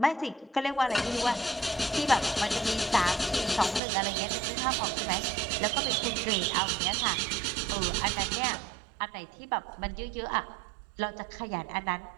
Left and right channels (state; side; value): drops out; left; at 3.8 s